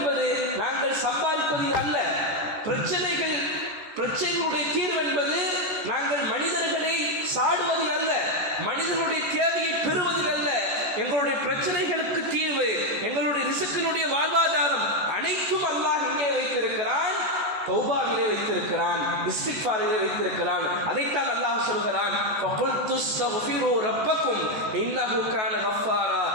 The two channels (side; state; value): left; late; 14 ms